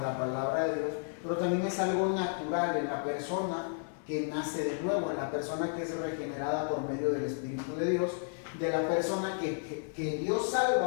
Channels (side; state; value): right; silent; 56 dB below the other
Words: palabra de Dios, pero también es algo natural en la persona que nace de nuevo, en la persona que es regenerada por medio del Espíritu de Dios, de la persona que Dios